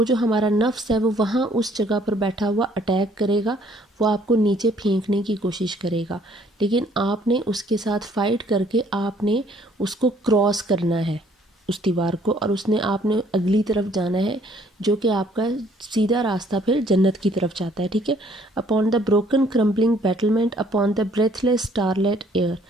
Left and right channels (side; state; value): both; normal; correlation 0.62